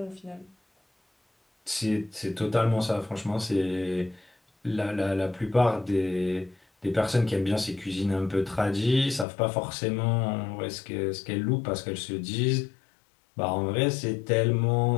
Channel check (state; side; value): drops out; right; at 9.2 s